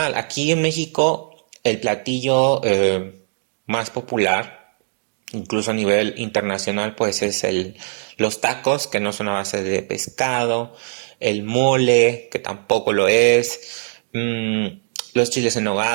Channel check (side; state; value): left; silent; digital silence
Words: Aquí en México el platillo más popular, incluso a nivel internacional, pues es los tacos, que no son a base de pescado, el mole, que tampoco lo es, los chiles en